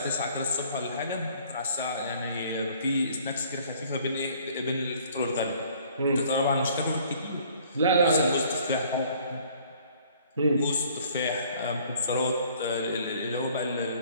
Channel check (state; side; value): inverted; both; correlation -0.57